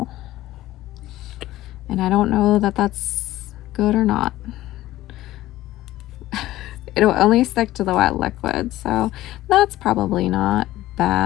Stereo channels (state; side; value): quieter; right; 15.6 dB